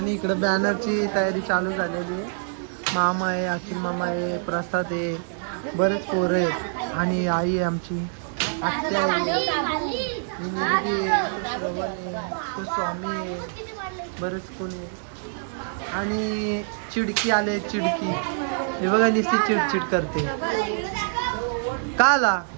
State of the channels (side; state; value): left; silent; digital silence